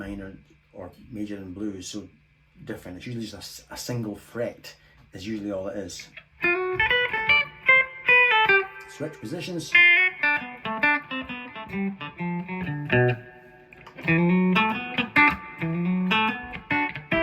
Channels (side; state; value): both; identical; correlation 1.00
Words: or major and blues, so different. It's usually just a single fret is usually all it is. Switch positions.